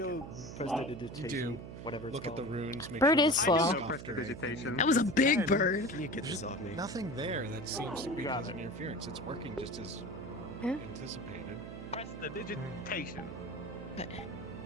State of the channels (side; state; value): right; noise; hum, 11 dB below the sound